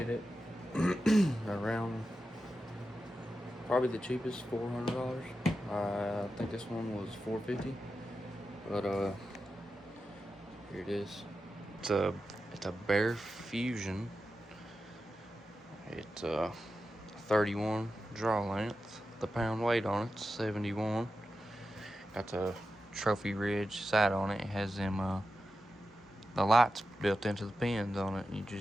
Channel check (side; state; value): both; normal; correlation 0.91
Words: it around probably the cheapest, $400. I think this one was $450, but here it is. It's a Bear Fusion. It's 31 draw length. The pound weight on it's 71. Got the Trophy Ridge sight on it. It has them the lights built into the pins on it. You